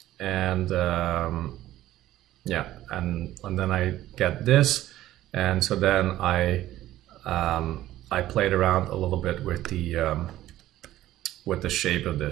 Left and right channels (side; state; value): left; quieter; 14.4 dB